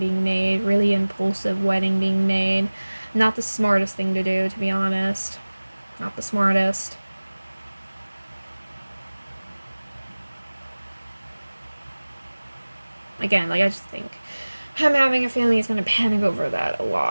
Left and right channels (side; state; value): both; inverted; correlation -1.00